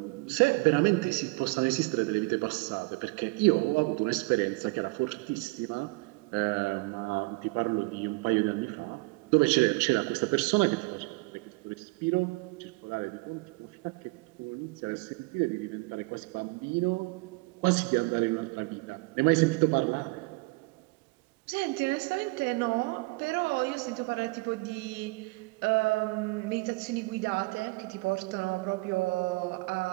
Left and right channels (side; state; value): left; quieter; 26.4 dB